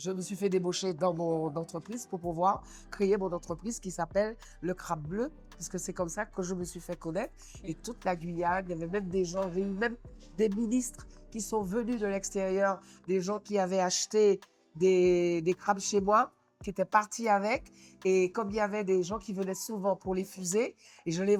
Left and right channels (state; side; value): identical; both; correlation 1.00